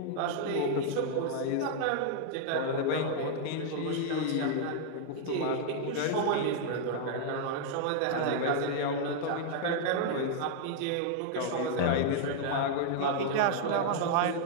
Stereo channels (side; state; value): both; different; correlation 0.00